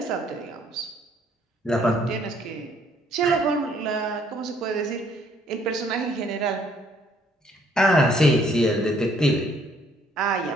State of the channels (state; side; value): normal; both; correlation 0.64